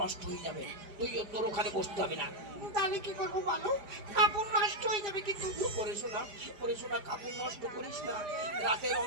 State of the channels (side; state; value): left; late; 4.9 ms